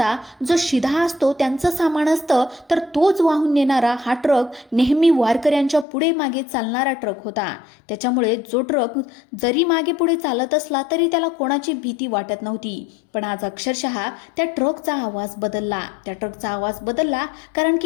जो शिधा असतो त्यांचं सामान असतं, तर तोच वाहून नेणारा हा ट्रक नेहमी वारकऱ्यांच्या पुढे मागे चालणारा ट्रक होता. त्याच्यामुळे जो ट्रक जरी मागे पुढे चालत असला तरी त्याला कोणाची भीती वाटत नव्हती. पण आज अक्षरशः त्या ट्रकचा आवाज बदलला. कारण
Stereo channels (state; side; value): drops out; right; at 5.9 s